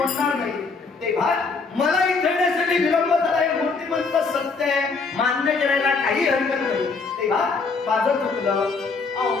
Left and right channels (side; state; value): right; quieter; 4.4 dB